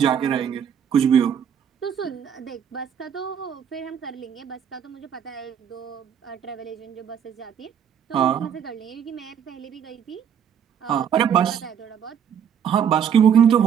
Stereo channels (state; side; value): quieter; left; 8.2 dB